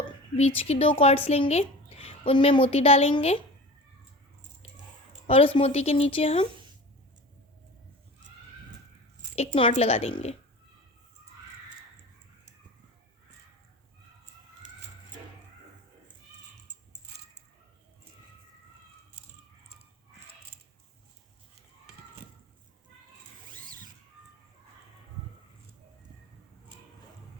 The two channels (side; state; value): both; normal; correlation 0.36